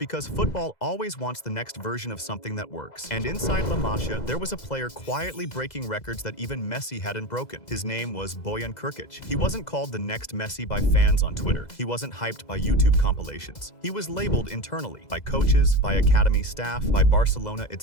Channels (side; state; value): right; late; 2.0 ms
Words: football always wants the next version of something that works. And inside La Masia, there was a player quietly breaking records that even Messi hadn't broken. His name was Bojan Krkić. He wasn't called the next Messi by fans on Twitter. He wasn't hyped by YouTube compilations. He was labeled internally by coaches, by academy staff, by Barcelona